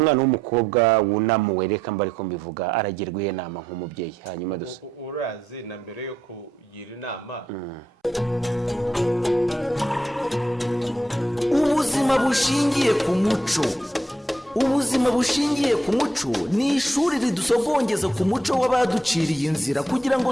w'umukobwa wunamuwe reka mbari ko mbivuga aragirwa inama nk'umubyeyi. Hanyuma dusa urazi na mbere yo kugira inama ubuzima bushingiye ku muco. Ubuzima bushingiye ku muco ni ishuri ridusogongeza ku muco w'abaduciriye inzira kugira ngo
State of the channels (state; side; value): normal; both; correlation 0.78